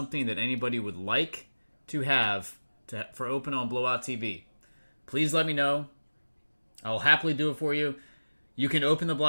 that anybody would like to have for open on Blowout TV, please let me know. I'll happily do it for you. You can open the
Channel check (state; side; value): inverted; both; correlation -1.00